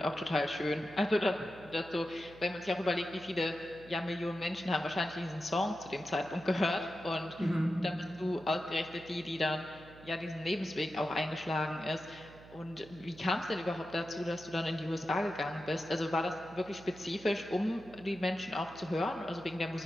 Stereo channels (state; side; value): noise; right; hum, 19 dB below the sound